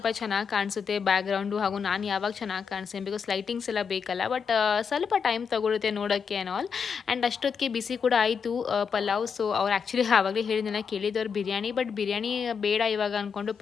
ಚೆನ್ನಾಗಿ ಕಾಣಿಸುತ್ತೆ ಬ್ಯಾಕ್ಗ್ರೌಂಡು, ಹಾಗೂ ನಾನು ಯಾವಾಗ ಚೆನ್ನಾಗಿ ಕಾಣಿಸ್ತೀನಿ, ಬಿಕಾಸ್ ಲೈಟಿಂಗ್ಸ್ ಎಲ್ಲ ಬೇಕಲ್ಲ. ಬಟ್ ಸ್ವಲ್ಪ ಟೈಮ್ ತೊಗೊಳುತ್ತೆ ನೋಡೋಕ್ಕೆ ಆ್ಯಂಡ್ ಆಲ್. ಆ್ಯಂಡ್ ಅಷ್ಟೊತ್ತಿಗೆ ಬಿಸಿ ಕೂಡ ಆಯಿತು ಪಲಾವ್. ಸೊ ಅವ್ರು ಆ್ಯಕ್ಚುಲಿ ಆವಾಗಲೇ ಹೇಳಿದ್ನಲ್ಲ, ಕೇಳಿದವ್ರು ಬಿರಿಯಾನಿ, ಬಟ್ ಬಿರಿಯಾನಿ ಬೇಡ ಇವಾಗ ಅಂದ್ಕೊಂಡು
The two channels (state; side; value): quieter; right; 6.3 dB